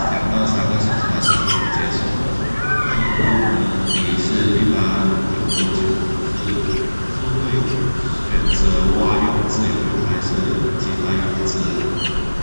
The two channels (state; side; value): inverted; both; correlation -1.00